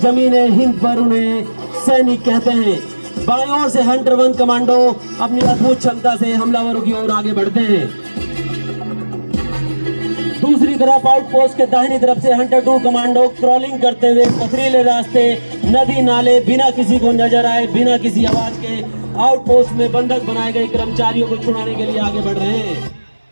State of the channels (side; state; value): both; inverted; correlation -1.00